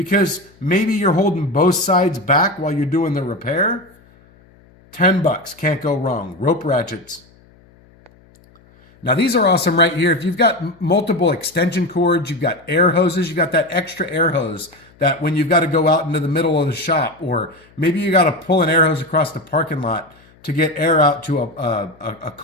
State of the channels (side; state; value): left; noise; hum, 29 dB below the sound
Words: maybe you're holding both sides back while you're doing the repair. 10 bucks, can't go wrong. Rope ratchets. Now these are awesome right here. If you've got multiple extension cords, you've got air hoses, you've got that extra air hose that when you've got to go out into the middle of the shop, or maybe you got to pull an air hose across the parking lot to get air out to a